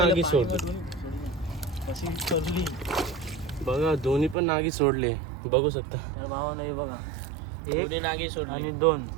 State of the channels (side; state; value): left; drops out; at 4.4 s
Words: सोडले। कशी सोडली बघा दोन्ही पण नागी सोडले, बघू शकता। तर भावानं हे बघा, दोन्ही नागी सोडली आणि